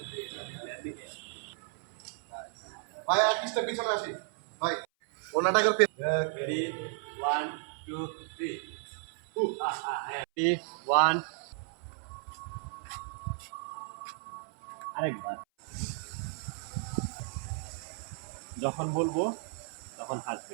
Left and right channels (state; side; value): silent; left; 55 dB below the other